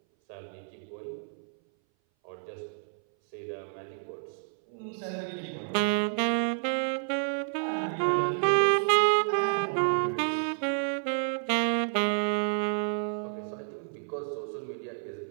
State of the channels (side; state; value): left; silent; 58 dB below the other